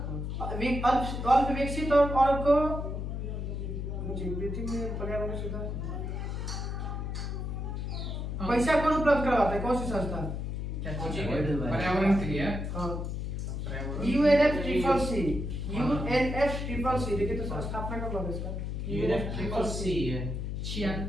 अल्प विकसित और को पृथ्वी में पर्यावरण सुधार पैसा कौन उपलब्ध करवाता है? कौन सी संस्था? पर्यावरण के लिए UNFCCC। UNFCCC देखिए तो स्थापना कब हुआ इसका? UNFCCC है। छियान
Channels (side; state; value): left; noise; hum, 3 dB below the sound